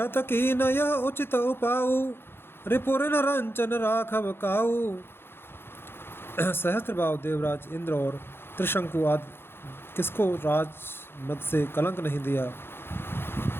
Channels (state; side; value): late; right; 0.11 ms